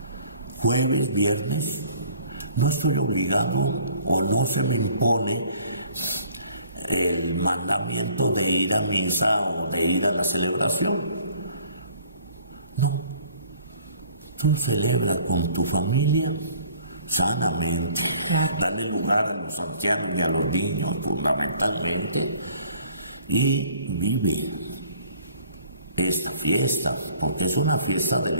Jueves, viernes, no estoy obligado o no se me impone el mandamiento de ir a misa o de ir a la celebración. No. Tú celebra con tu familia sanamente. Claro. Dale lugar a los ancianos y a los niños fundamentalmente. Y vive esta fiesta, porque es una fiesta de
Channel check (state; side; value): inverted; both; correlation -0.57